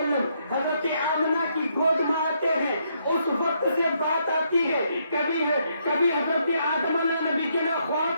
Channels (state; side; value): inverted; both; correlation -0.74